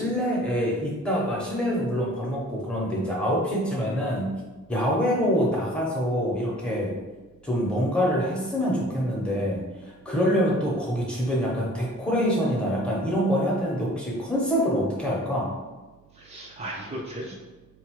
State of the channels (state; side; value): noise; right; hum, 29 dB below the sound